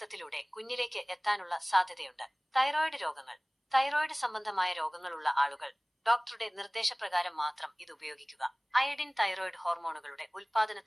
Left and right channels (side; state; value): both; identical; correlation 1.00